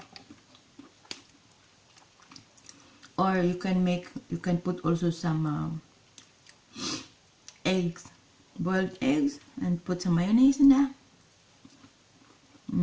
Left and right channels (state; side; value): identical; both; correlation 1.00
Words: Or you can put also some eggs, boiled eggs, and put some mayonnaise in there.